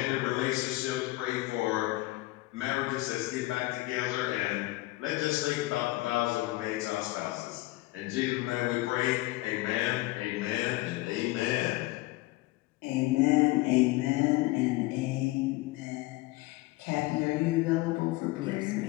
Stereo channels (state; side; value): quieter; right; 19.8 dB